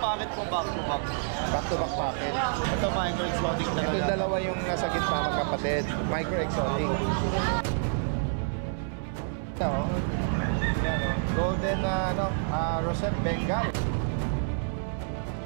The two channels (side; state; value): left; silent; 59 dB below the other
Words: po, back to back. Back to back packet. Ito micro exotic talaga. Ito dalawa yung nasa gitna magkapatid. Micro exotic. Ito, oh. Ayan, oh. Golden Rosette Bengal.